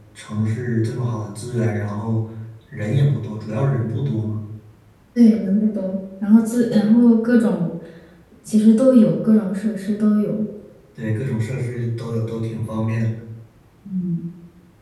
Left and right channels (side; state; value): both; identical; correlation 1.00